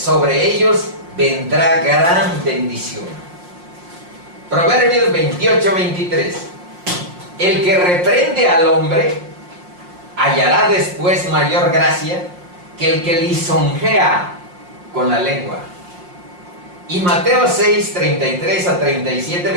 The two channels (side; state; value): left; late; 5.6 ms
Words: ellos vendrá gran bendición. Proverbios 28, 23. El que reprende al hombre hallará después mayor gracia que el que lisonjea con la lengua. Y Mateo 6, 33 a 37,